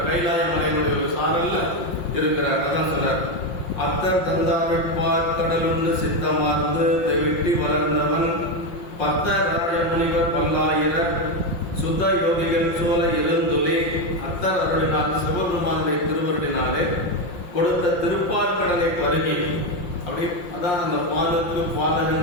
கைலாய மலையினுடைய ஒரு சாரல்ல இருக்கிறார். அதான் சொல்றார், அத்தர் தந்தாவிற்பார் கடலுண்டு சித்தமார்ந்து வெட்டி வளர்ந்தவன் பத்தராய முனிவர் பல்லாயிர சுத்த யோகிகள் சோழ இருந்துலே அத்தர் அருளினால் சிவபெருமானுடைய திருவருளினாலே கொடுத்த திருப்பார்கடலை பருகி அப்படி அதான் அந்த பாலுக்கு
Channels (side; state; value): right; late; 5.6 ms